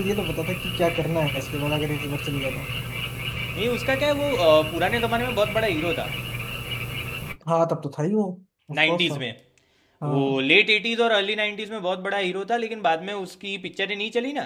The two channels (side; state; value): both; identical; correlation 1.00